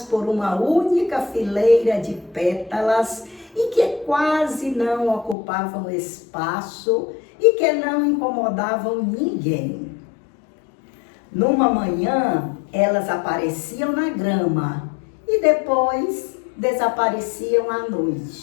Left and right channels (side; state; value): right; drops out; at 5.4 s